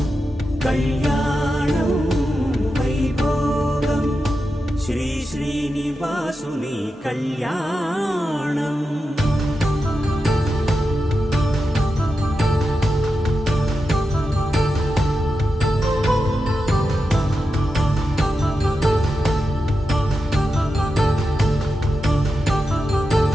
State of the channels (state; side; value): normal; both; correlation 0.89